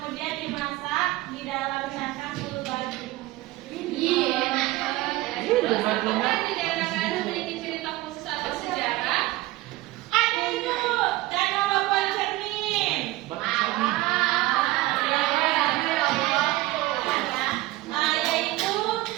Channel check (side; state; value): left; quieter; 18.2 dB